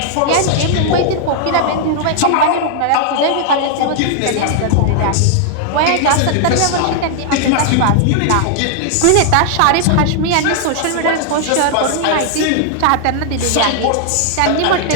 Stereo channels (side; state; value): both; different; correlation 0.00